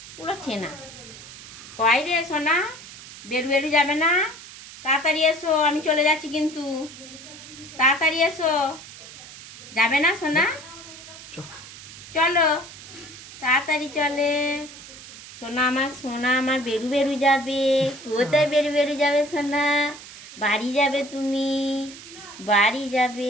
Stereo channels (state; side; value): noise; right; hiss, 16 dB below the sound